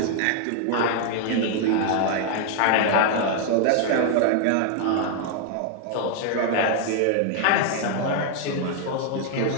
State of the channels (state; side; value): different; both; correlation 0.00